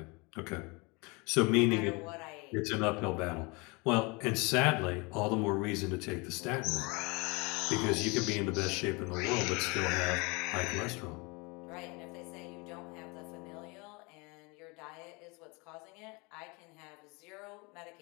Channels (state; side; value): quieter; right; 28.0 dB